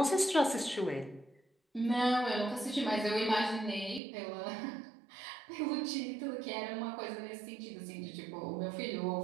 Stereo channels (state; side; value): drops out; left; at 4.0 s